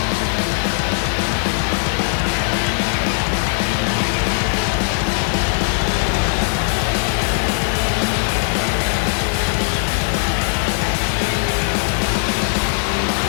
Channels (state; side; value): silent; right; digital silence